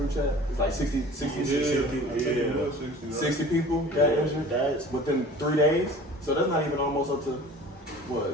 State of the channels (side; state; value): both; normal; correlation 0.43